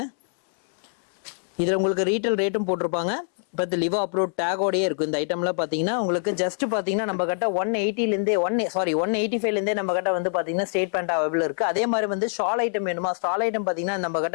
இதுல உங்களுக்கு ரீட்டைல் ரேட்டும் போட்டிருப்பாங்க, பட் லிவா அப்ரூவ் டேகோடயே இருக்கும். இந்த ஐட்டம்ல பாத்தீங்கன்னா உங்களுக்கு ஜஸ்ட் பாத்தீங்கன்னா நம்ம கிட்ட 180 ல இருந்தே 185 ல இருந்தே நம்ம கிட்ட வந்து பாத்தீங்கன்னா ஸ்ட்ரெயிட் பேண்ட் அவைலபிள் இருக்கு. அதே மாதிரி வந்து ஷால் ஐட்டம் வேணுமா, ஷால் ஐட்டம் பாத்தீங்கன்னா நம்ம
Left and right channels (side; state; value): right; silent; 62 dB below the other